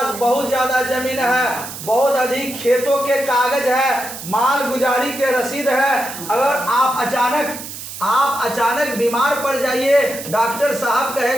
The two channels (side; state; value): right; noise; hiss, 10 dB below the sound